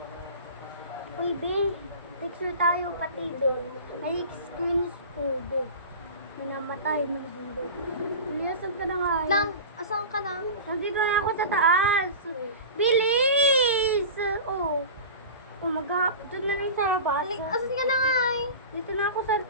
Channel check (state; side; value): inverted; both; correlation -0.32